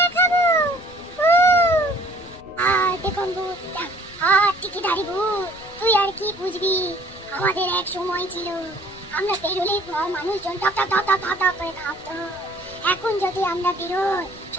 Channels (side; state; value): left; noise; rumble, 22 dB below the sound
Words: দেখাবো? আর দেখুন ভূত, আর টিকিধারী ভূত, তুই আর কি বুঝবি? আমাদের এক সময় ছিল, আমরা বেরোলেই মানুষজন টক টক টক টক টক করে কাঁপতো। এখন যদি আমরা বেরোই,